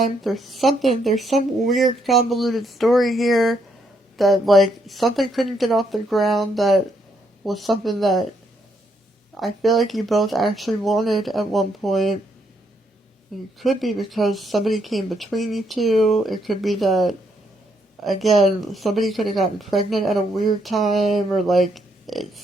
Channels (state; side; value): normal; both; correlation 0.74